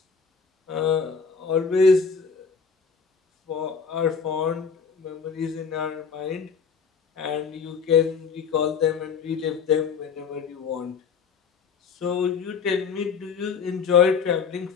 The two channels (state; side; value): quieter; right; 5.9 dB